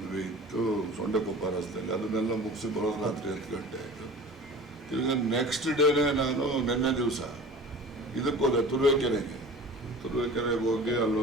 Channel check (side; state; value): both; normal; correlation 0.40